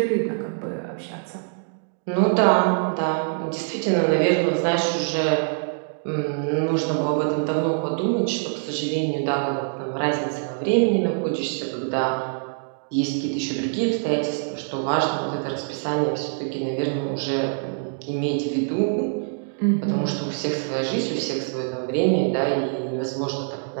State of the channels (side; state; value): left; silent; digital silence